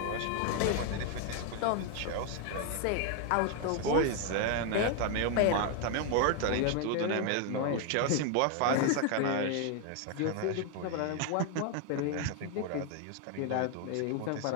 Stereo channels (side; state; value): both; different; correlation 0.01